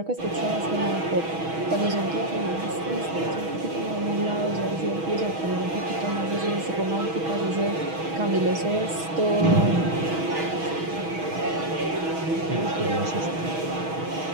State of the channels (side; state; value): left; late; 6.2 ms